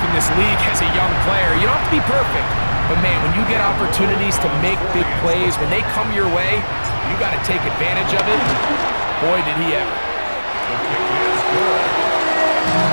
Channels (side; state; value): both; inverted; correlation -1.00